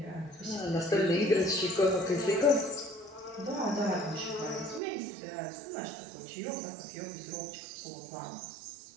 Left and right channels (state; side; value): drops out; left; at 4.8 s